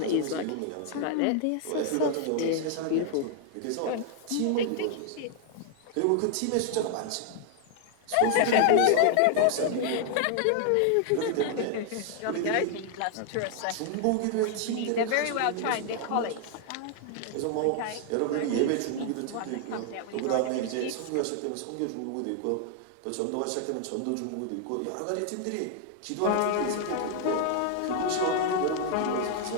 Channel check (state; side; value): different; both; correlation 0.00